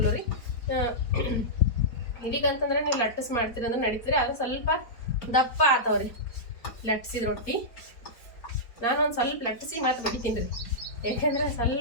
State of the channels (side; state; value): right; late; 4.4 ms